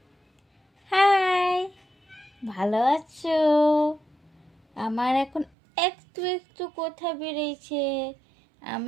হাই, ভালো আছো? আমার এখন একটু একটু কথা বেরিয়েছে।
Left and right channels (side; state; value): left; drops out; at 5.5 s